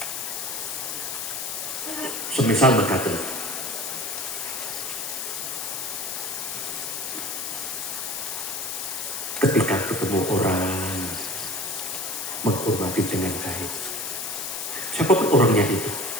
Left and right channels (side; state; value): left; noise; hiss, 4 dB below the sound